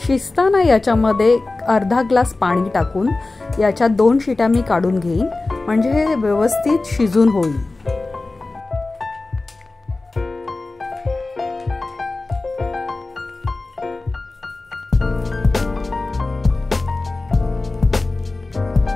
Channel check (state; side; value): quieter; right; 3.3 dB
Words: शिजताना याच्यामध्ये अर्धा ग्लास पाणी टाकून याच्या 2 शिट्या मी काढून घेईन, म्हणजे हे व्यवस्थित शिजून होईल.